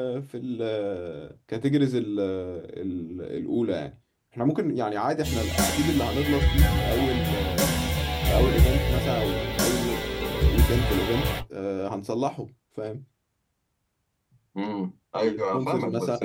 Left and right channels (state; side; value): identical; both; correlation 1.00